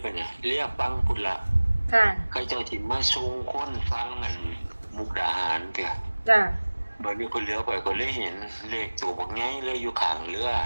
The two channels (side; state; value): both; inverted; correlation -1.00